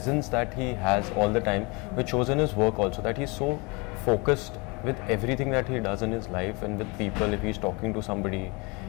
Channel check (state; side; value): quieter; right; 28.4 dB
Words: that he has all the time, which shows in his work also, that he's so focused with everything that he does in his life and with people, if he's talking to somebody,